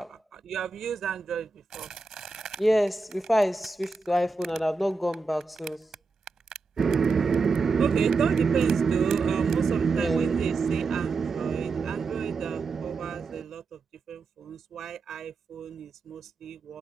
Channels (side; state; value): left; quieter; 4.0 dB